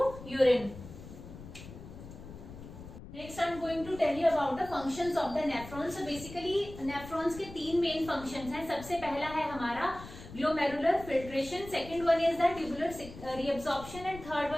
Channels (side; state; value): left; noise; rumble, 14 dB below the sound